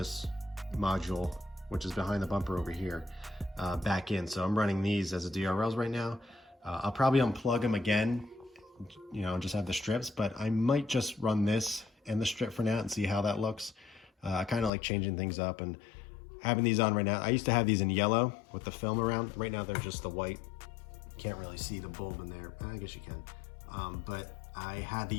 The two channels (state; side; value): drops out; right; at 14.7 s